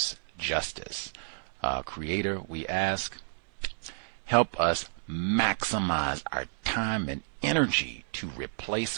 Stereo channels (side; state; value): left; silent; 57 dB below the other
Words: justice. Creator, we ask, help us maximize our time and energy to